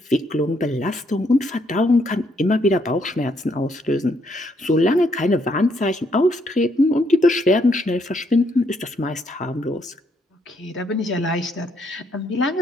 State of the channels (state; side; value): normal; both; correlation 0.73